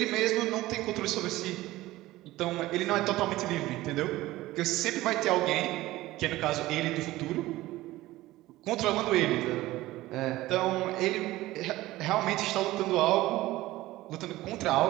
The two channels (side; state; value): left; quieter; 17.3 dB